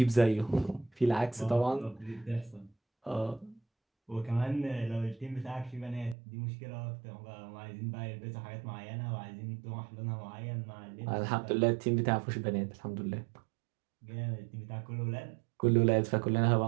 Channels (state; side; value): drops out; left; at 6.2 s